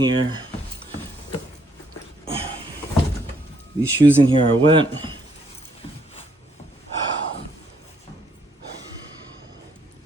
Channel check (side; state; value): both; normal; correlation 0.71